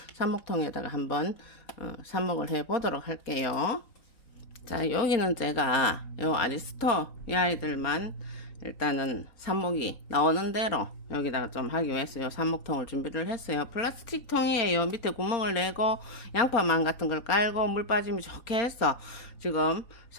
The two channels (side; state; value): right; late; 3.9 ms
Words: 삽목통에다가 한번 삽목을 해 보도록 할게요. 자, 여기는 제가 요 아리스토 이 아이들만 일단은 삽목이 나오는 대로 여기다가 좀 하기 위해서 요 삽목통을 준비를 했어요. 플라스틱 통이에요. 밑에 구멍을 내고 양파망 같은 걸 깔고 물 빠짐이 좋게 해서 지금